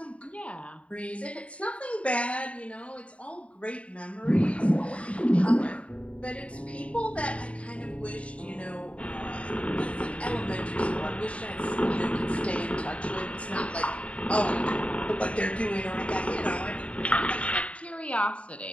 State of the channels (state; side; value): late; right; 0.064 ms